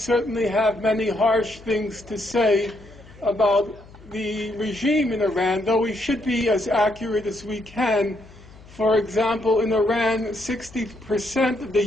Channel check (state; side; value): noise; left; hum, 22 dB below the sound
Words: have many harsh things to say about the regime in Iran, though we should be as accurate as we can. For example, in Iran, 60% of the